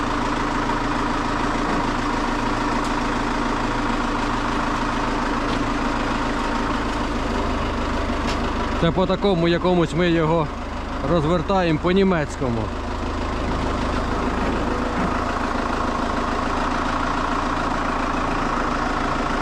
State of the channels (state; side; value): identical; both; correlation 1.00